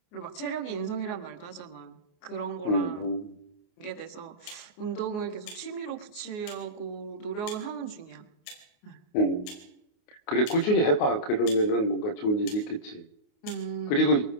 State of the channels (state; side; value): late; right; 28 ms